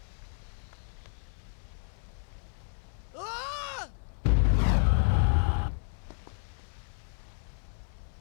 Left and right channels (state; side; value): silent; right; 57 dB below the other